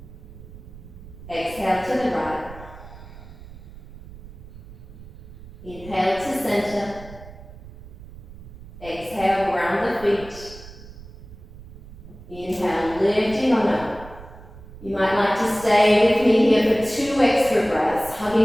Exhale to the right. Inhale to center. Exhale, ground the feet. Inhale, lifting on up. You might like to stay with me here for 2 extra breaths,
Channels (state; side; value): noise; right; rumble, 17 dB below the sound